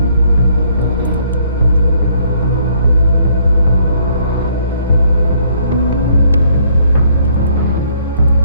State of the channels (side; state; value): both; inverted; correlation -0.64